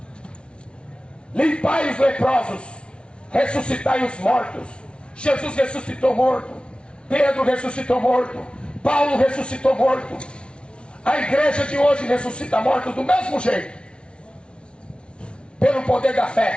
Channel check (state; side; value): late; right; 0.058 ms